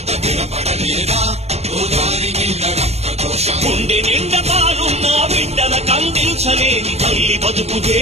వినబడలేదా గోదారి నీళ్ళ రక్త ఘోష గుండె నిండా పాలున్న బిడ్డల కందించలేని తల్లి బతుకు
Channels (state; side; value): late; left; 0.31 ms